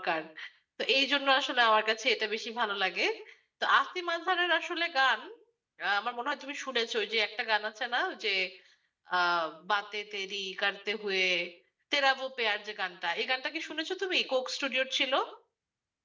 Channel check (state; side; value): identical; both; correlation 1.00